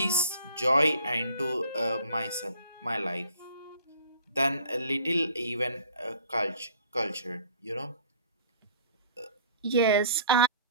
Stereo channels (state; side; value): inverted; both; correlation -0.54